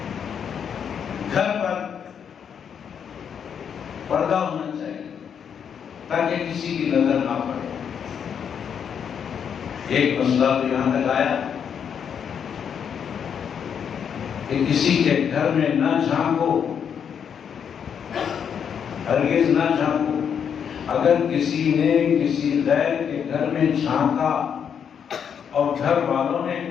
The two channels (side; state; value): right; quieter; 7.7 dB